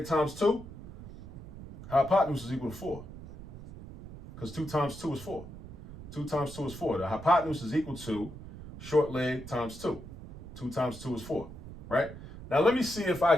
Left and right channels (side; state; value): right; noise; rumble, 14 dB below the sound